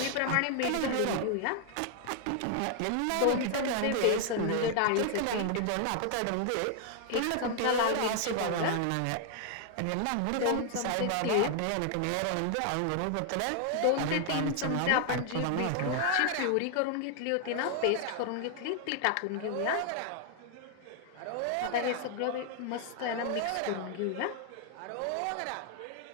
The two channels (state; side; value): different; both; correlation 0.00